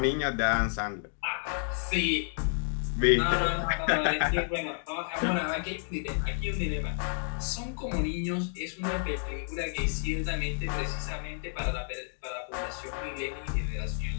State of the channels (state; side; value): silent; right; 57 dB below the other